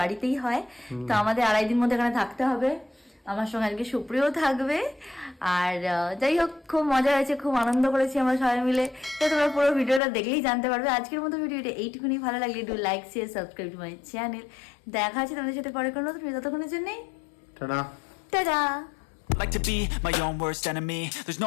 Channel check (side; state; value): right; drops out; at 10.0 s